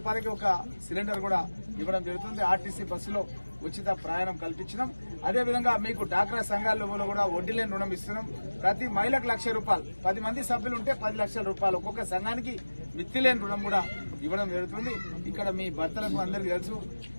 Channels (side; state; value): both; inverted; correlation -1.00